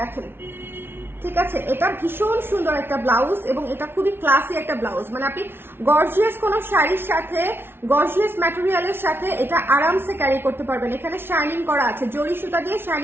ঠিক আছে? এটা ভীষণ সুন্দর একটা ব্লাউজ, এবং এটা খুবই ক্লাসি একটা ব্লাউজ, মানে আপনি গর্জিয়াস কোনো শাড়ির সাথে, গর্জিয়াস ম্যাটেরিয়ালের সাথে এটা আরামসে ক্যারি করতে পারবেন। এখানে শাইনিং করা আছে, জরি সুতা দিয়ে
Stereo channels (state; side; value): late; left; 0.11 ms